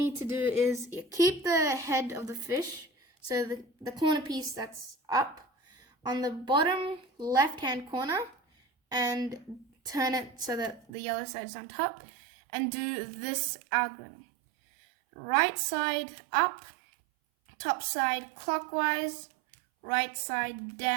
to do is you keep the head of the fish, so the corner piece that's up, on the bottom left-hand corner, and turn it so that the yellow side is on top, and do this algorithm. Right side up, top side clockwise, right side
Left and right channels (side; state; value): left; drops out; at 10.9 s